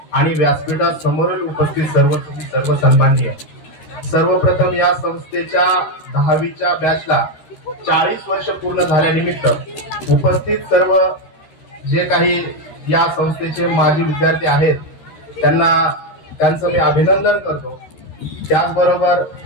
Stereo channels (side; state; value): right; late; 13 ms